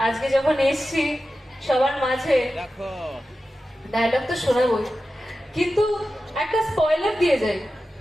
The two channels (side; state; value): both; normal; correlation 0.93